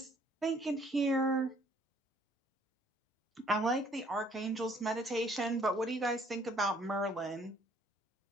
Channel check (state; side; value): normal; both; correlation 0.61